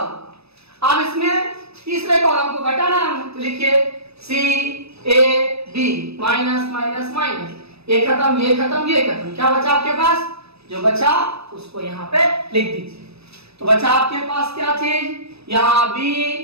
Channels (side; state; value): left; late; 0.78 ms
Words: अब इसमें तीसरे कॉलम को घटाना है, तो लिखिए C A B, minus minus minus, ये खत्म, ये खत्म, ये खत्म। क्या बचा आपके पास, जो बचा उसको यहाँ पे लिख दीजिए। तो बचा आपके पास क्या चीज, यहाँ बी,